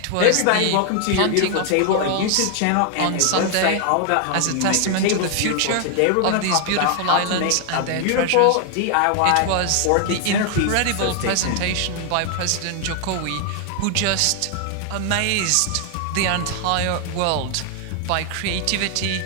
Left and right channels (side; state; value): both; different; correlation 0.00